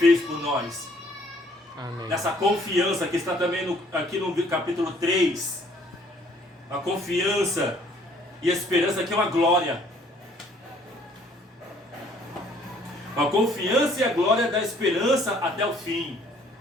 por nós. Amém. Nessa confiança que está também aqui no capítulo 3, a confiança e a esperança que é uma glória. A confiança e a glória da esperança até o fim.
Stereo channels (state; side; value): normal; both; correlation 0.61